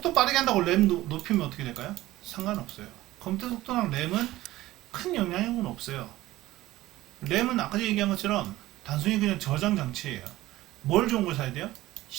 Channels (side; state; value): left; quieter; 16.6 dB